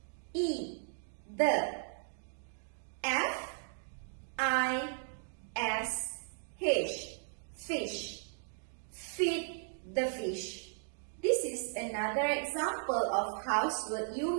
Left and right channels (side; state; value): left; silent; digital silence